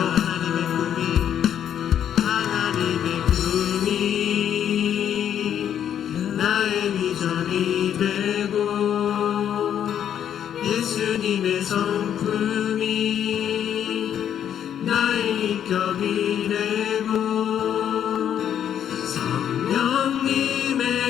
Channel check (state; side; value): quieter; right; 9.5 dB